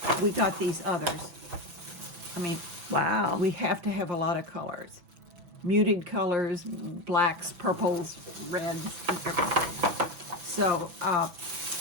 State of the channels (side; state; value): left; late; 6.1 ms